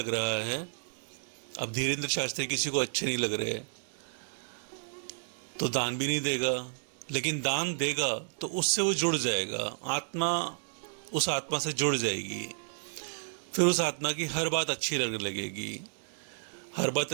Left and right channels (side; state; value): left; silent; 55 dB below the other